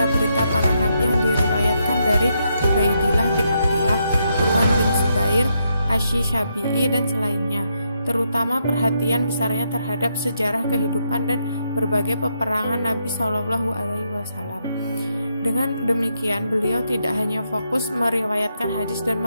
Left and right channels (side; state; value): both; inverted; correlation -0.79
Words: para nabi yang diriwayatkan dari Ubaidillah bin Abdillah, Urwan bin Zubair, Asy-Syafi'i dan selainnya, terutama perhatian besarnya terhadap sejarah kehidupan dan berbagai peperangan Nabi SAW. Dengan demikian, beliau tidak hanya fokus meriwayatkan hadis dan